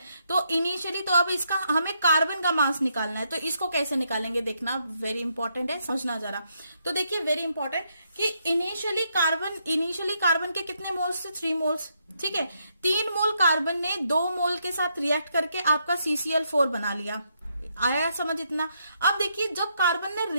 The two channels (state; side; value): inverted; both; correlation -0.77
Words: तो इनिशियली तो अब इसका हमें कार्बन का मास निकालना है, तो इसको कैसे निकालेंगे देखना, वेरी इंपॉर्टेंट है, समझना जरा। तो देखिए वेरी इंपॉर्टेंट कि इनिशियली कार्बन के कितने मोल्स थे 3 मोल्स, ठीक है। 3 मोल कार्बन ने 2 मोल के साथ रिएक्ट करके आपका CCl4 बना लिया, आया समझ इतना। अब देखिए जब कार्बन ने